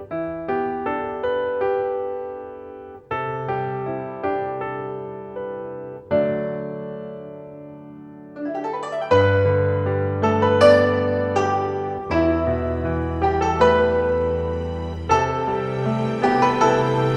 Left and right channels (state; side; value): identical; both; correlation 1.00